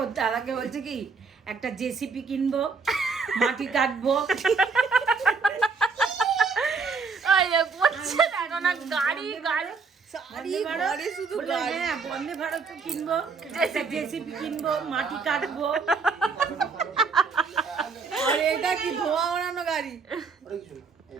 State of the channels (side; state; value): left; quieter; 4.8 dB